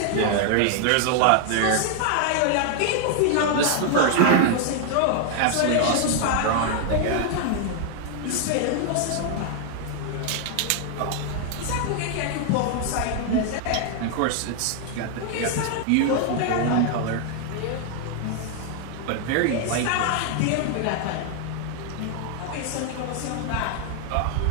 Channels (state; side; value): different; both; correlation 0.00